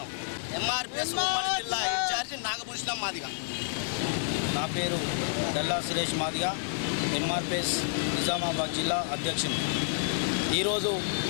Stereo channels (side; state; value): right; silent; digital silence